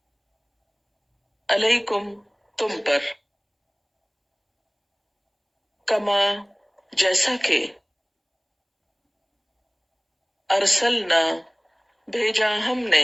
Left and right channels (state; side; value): identical; both; correlation 1.00